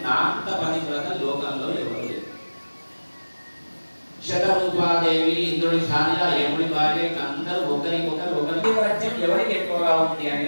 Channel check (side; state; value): both; inverted; correlation -1.00